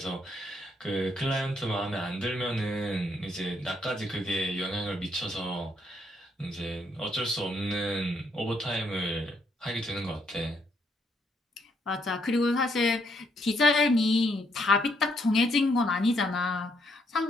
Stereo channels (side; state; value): both; normal; correlation 0.73